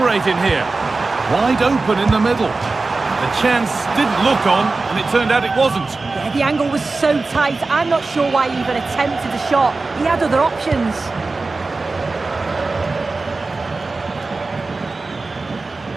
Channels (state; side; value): quieter; left; 3.7 dB